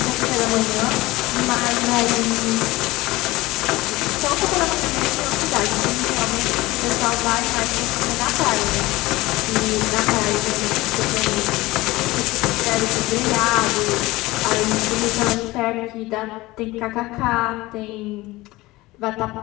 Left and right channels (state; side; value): quieter; right; 19.7 dB